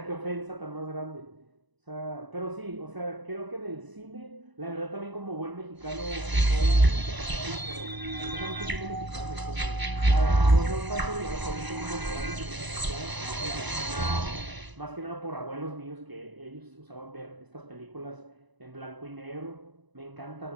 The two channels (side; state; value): left; late; 1.0 ms